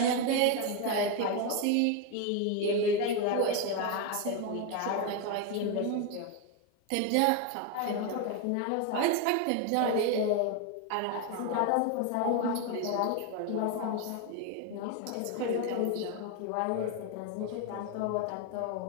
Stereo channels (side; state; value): both; different; correlation 0.01